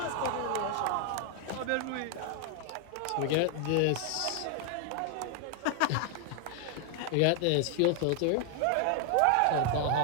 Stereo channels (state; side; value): different; both; correlation 0.00